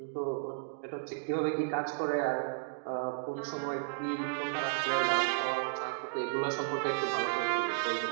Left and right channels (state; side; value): silent; left; digital silence